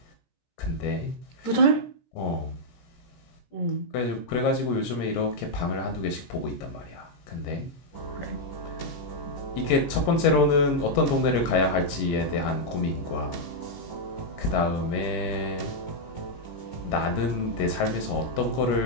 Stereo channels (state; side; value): late; right; 17 ms